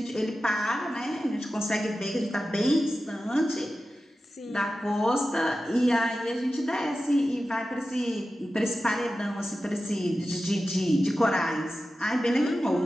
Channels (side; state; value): both; normal; correlation 0.93